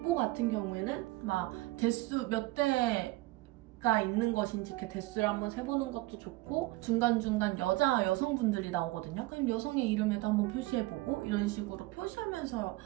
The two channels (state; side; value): quieter; left; 19.7 dB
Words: 같은 경우에는 막 대수 몇 대가 있는 것인지 이렇게 대수를 한번 세보는 것도 좋고 중간중간 여성분들이 나오거든요. 그럼 여성의 이름에도 한번 표시해보고 이런 식으로 표시하면서